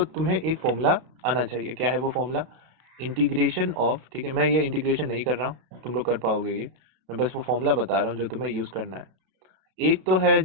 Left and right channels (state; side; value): late; left; 32 ms